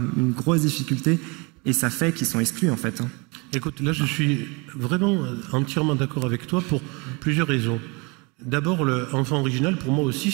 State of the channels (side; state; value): left; quieter; 29.2 dB